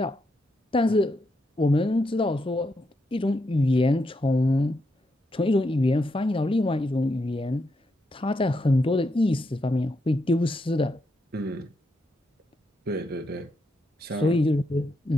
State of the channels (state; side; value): normal; both; correlation 0.81